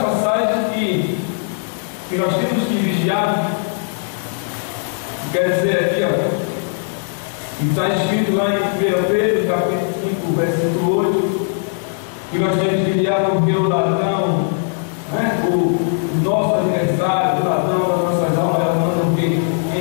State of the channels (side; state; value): right; silent; digital silence